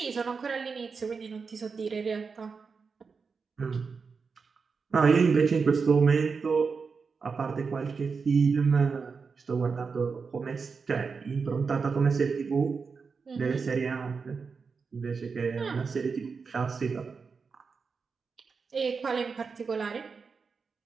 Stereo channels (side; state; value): left; quieter; 5.1 dB